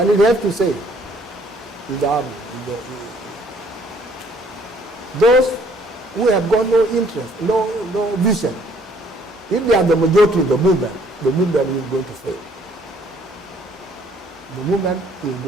it has to say, in the army, those who have got no interest, no vision, if they are the majority of the movement is going to fail. The movement is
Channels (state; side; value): normal; both; correlation 0.62